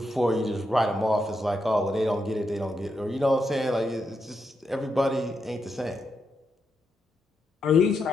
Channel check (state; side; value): normal; both; correlation 0.83